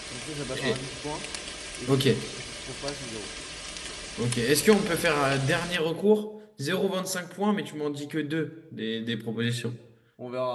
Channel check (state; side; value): identical; both; correlation 1.00